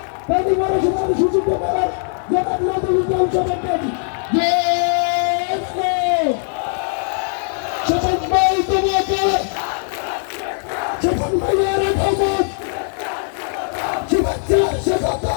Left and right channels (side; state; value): right; silent; 62 dB below the other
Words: সুযোগ করার জনাব নজরুল ইসলাম সভাপতি শপথ ভাই তোমাকে শপথ ভাইয়ের আগমন শুভেচ্ছা